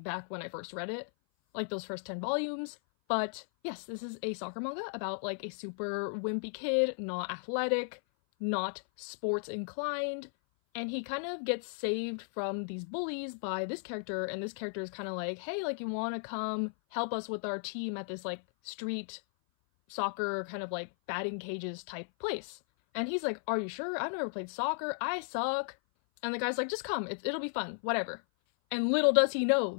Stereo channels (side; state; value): right; silent; 54 dB below the other